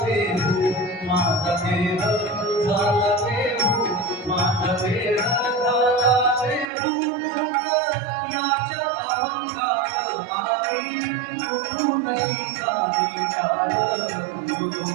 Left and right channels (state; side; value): drops out; left; at 6.7 s